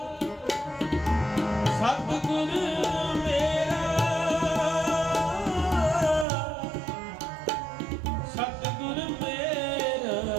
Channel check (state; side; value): drops out; left; at 6.2 s